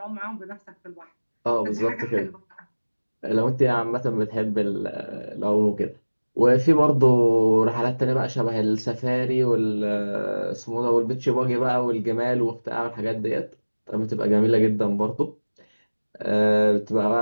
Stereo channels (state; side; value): inverted; both; correlation -1.00